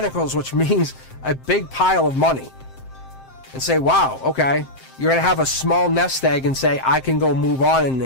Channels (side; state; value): right; late; 7.6 ms